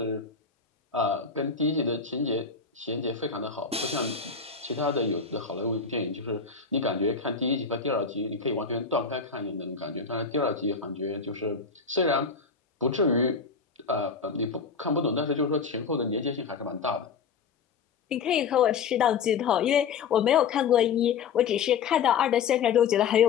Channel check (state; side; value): quieter; right; 5.7 dB